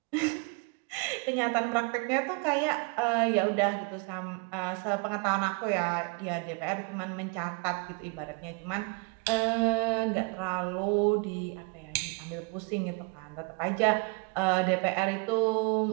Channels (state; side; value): quieter; left; 32.2 dB